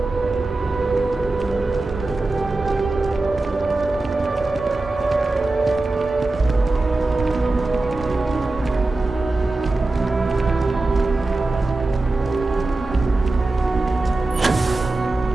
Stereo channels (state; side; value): quieter; left; 3.1 dB